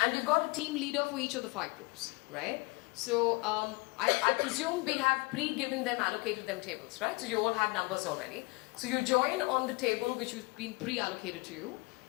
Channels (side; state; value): right; quieter; 27.1 dB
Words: you've got a team leader for each of the 5 groups, right? So I presume we have allocated them tables, right? So you all have numbers already. So you join on the table which has been pre-allocated to you.